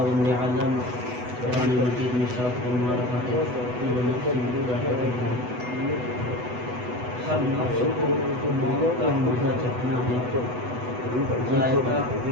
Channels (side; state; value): left; late; 8.1 ms